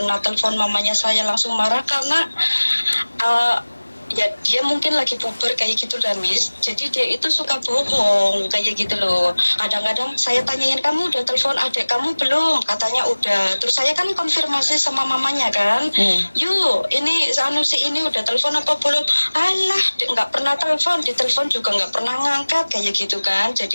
telepon mamanya, saya langsung marah karena ya dia mungkin lagi puber kayak gitu lah Miss. Jadi dia itu suka bohong kayak gitu loh. Kadang-kadang saya tanyain, kamu udah telepon adik kamu belum? Katanya udah. Terus saya kan konfirmasi sama mamanya kan. Yuk, ini si ini udah telepon apa belum? Alah, nggak pernah telepon, ditelepon juga nggak pernah ngangkat kayak gitu kan.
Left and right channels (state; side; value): inverted; both; correlation -1.00